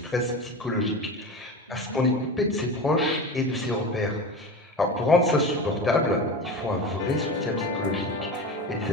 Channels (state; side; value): normal; both; correlation 0.28